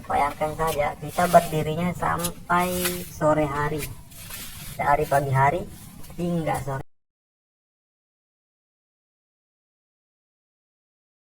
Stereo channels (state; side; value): identical; both; correlation 1.00